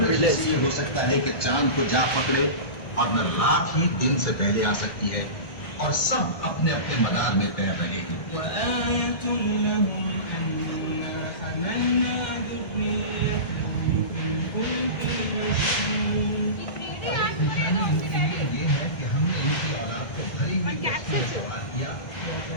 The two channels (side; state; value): right; late; 1.7 ms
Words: Village. ये हो सकता है कि चांद को जा पकड़े और न रात ही दिन से पहले आ सकती है और सब अपने अपने मदार में तैर रहे हैं। ये है कि हमने इनकी औलाद को भरी हुई कश्ती में सवार किया।